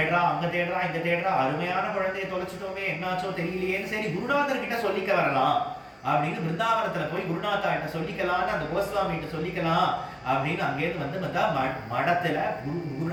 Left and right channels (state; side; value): identical; both; correlation 1.00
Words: அங்க தேடுறா, இங்க தேடுறா, அருமையான குழந்தைய தொலைச்சிட்டோமே, என்னாச்சோ தெரியலையேன்னு சரி குருநாதர் கிட்ட சொல்லிக்க வரலாம் அப்படின்னு பிருந்தாவனத்துல போய் குருநாதா கிட்ட சொல்லிக்கலான்னு அந்த கோஸ்வாமி கிட்ட சொல்லிக்கலாம் அப்படின்னு அங்கேருந்து வந்து மடத்துல